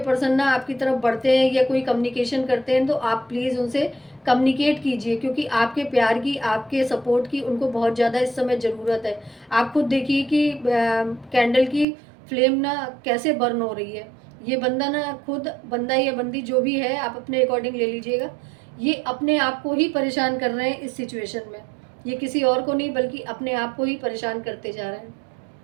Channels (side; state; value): left; drops out; at 11.9 s